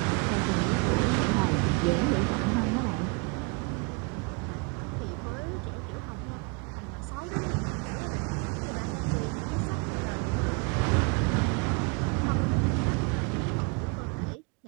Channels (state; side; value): quieter; left; 29.9 dB